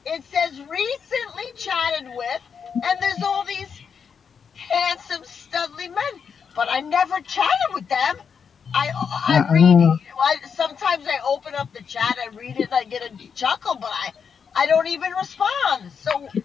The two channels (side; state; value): right; quieter; 6.6 dB